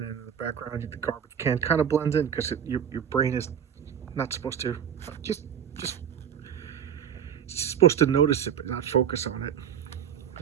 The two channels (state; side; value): quieter; left; 8.7 dB